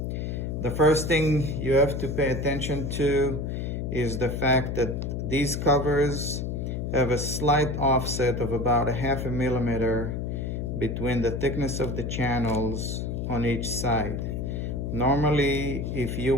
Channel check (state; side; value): noise; left; hum, 3 dB below the sound